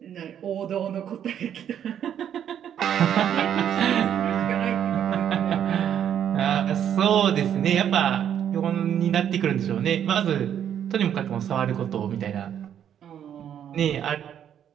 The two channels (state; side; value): quieter; left; 9.5 dB